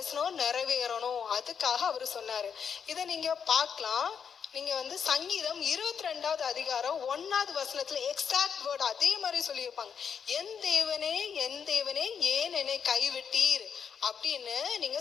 நிறைவேறணும், அதுக்காக அவர் சொன்னாரு. இதை நீங்க பார்க்கலாம். நீங்க சங்கீதம் 22வது அதிகாரம் 1வது வசனத்துல எக்ஸாக்ட் வேர்ட் அதே மாதிரி சொல்லியிருப்பாங்க. என் தேவனே ஏன் என்னை கைவிட்டீர் அப்படின்னு நீங்க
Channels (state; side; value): quieter; right; 7.1 dB